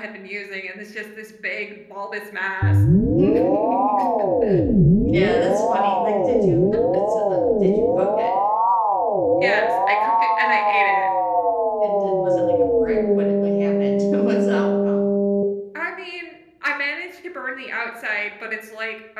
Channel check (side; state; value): both; identical; correlation 1.00